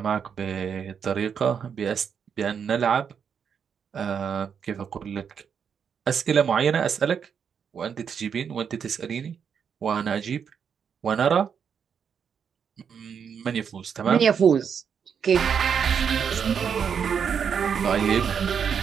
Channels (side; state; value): left; quieter; 7.2 dB